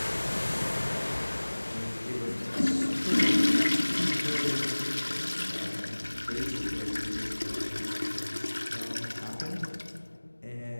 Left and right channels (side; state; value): both; inverted; correlation -1.00